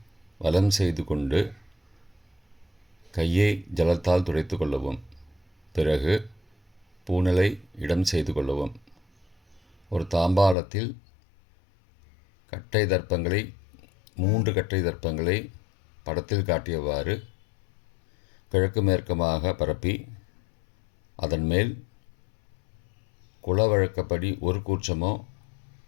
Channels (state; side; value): drops out; right; at 10.6 s